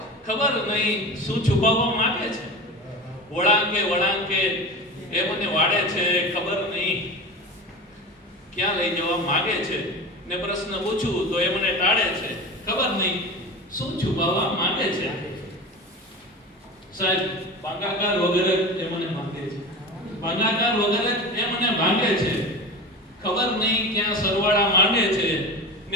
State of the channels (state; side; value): normal; both; correlation 0.30